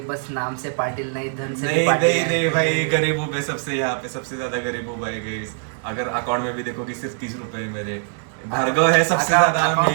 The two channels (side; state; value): left; silent; digital silence